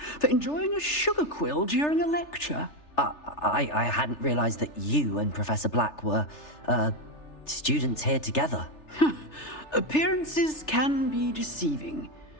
for enjoying a sugar quill during a lecture. I hadn't realized that you and Professor Black were, students here together. Appearances can be deceiving.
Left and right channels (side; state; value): right; late; 3.3 ms